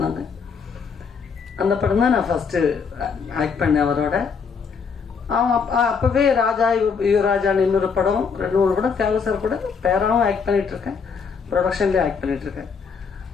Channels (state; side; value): quieter; right; 5.8 dB